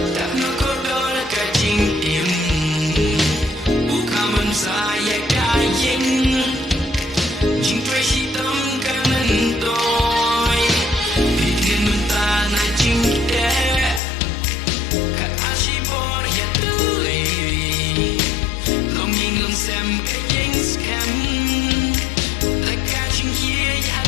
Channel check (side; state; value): right; drops out; at 14.0 s